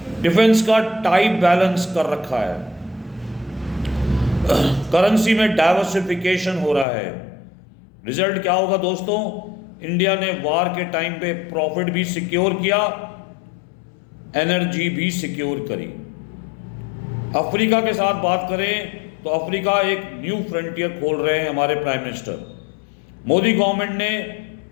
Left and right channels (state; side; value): drops out; right; at 6.9 s